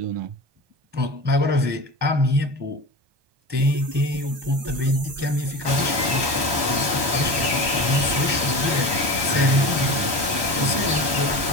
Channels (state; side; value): late; left; 1.2 ms